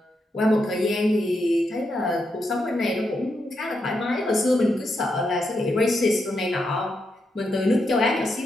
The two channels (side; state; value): both; normal; correlation 0.83